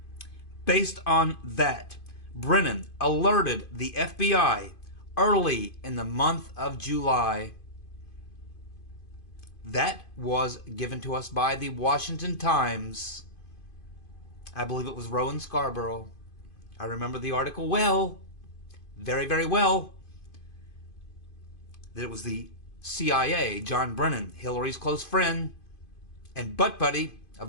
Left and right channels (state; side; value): late; right; 2.5 ms